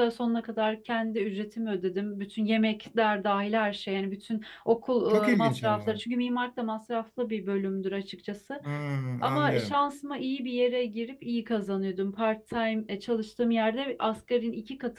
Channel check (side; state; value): both; identical; correlation 1.00